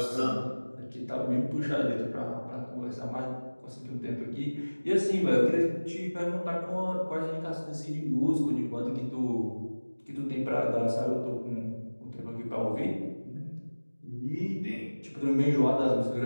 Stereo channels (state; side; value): inverted; both; correlation -1.00